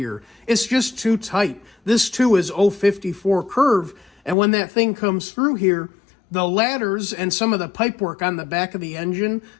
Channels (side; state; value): right; drops out; at 4.4 s